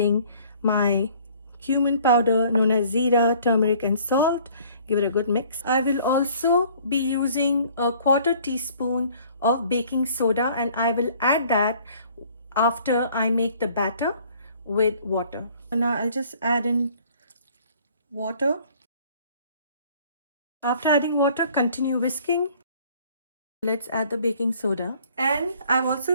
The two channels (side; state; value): both; inverted; correlation -0.55